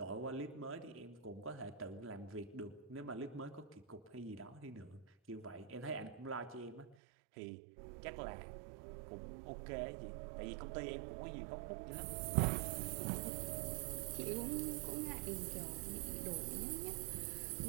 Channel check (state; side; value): drops out; left; at 7.0 s